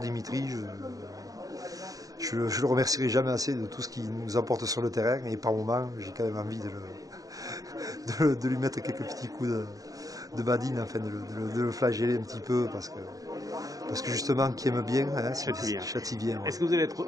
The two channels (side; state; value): left; late; 0.17 ms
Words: Je le remercierai jamais assez de tout ce qu'il nous apporte sur le terrain. Et par moments, j'ai quand même envie de lui mettre quelques petits coups de badine, afin de le flageller un petit peu, parce que justement, qui aime bien, hein, châtie bien. Ouais. Est-ce que vous allez être